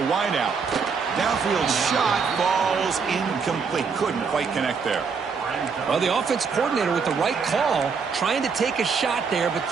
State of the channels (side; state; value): left; quieter; 5.5 dB